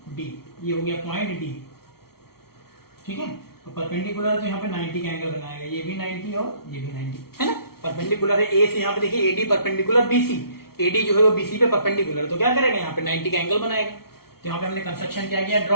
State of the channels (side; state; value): right; late; 0.94 ms